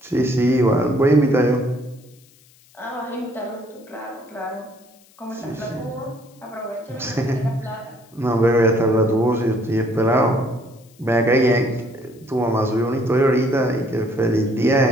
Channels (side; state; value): left; noise; hiss, 29 dB below the sound